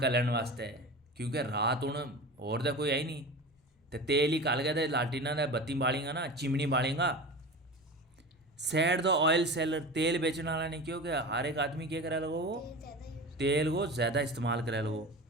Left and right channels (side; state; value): both; normal; correlation 0.31